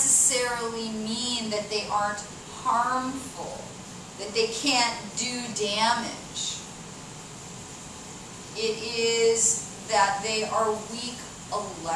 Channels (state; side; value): identical; both; correlation 1.00